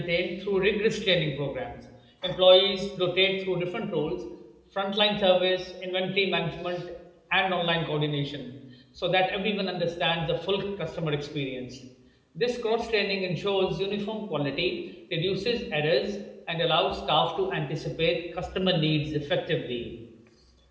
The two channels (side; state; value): both; identical; correlation 1.00